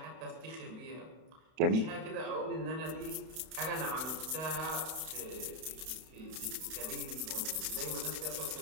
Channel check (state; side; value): late; left; 31 ms